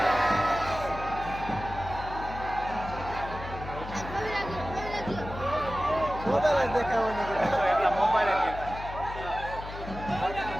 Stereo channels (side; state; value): left; noise; hum, 10 dB below the sound